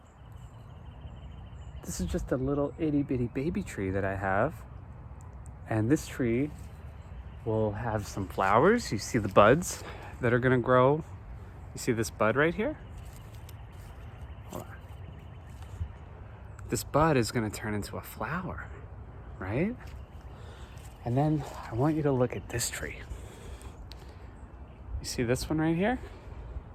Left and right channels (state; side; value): identical; both; correlation 1.00